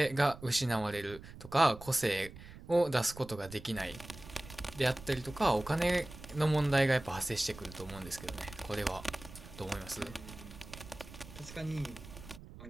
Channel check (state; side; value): noise; right; rumble, 16 dB below the sound